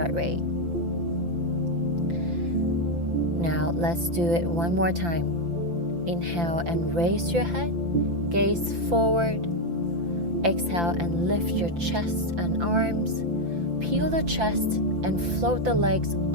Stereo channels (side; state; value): left; late; 5.9 ms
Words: rate. Now let's do it one more time. Inhale and raise your head, gaze forward. Exhale and lift your chest and arms. Peel the chest and float the legs